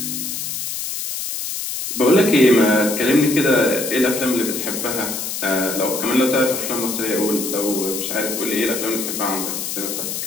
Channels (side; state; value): left; noise; hiss, 4 dB below the sound